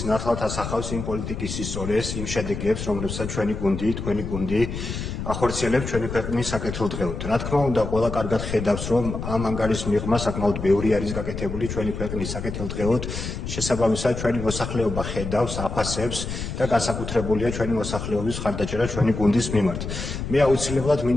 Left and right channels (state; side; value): noise; left; rumble, 6 dB below the sound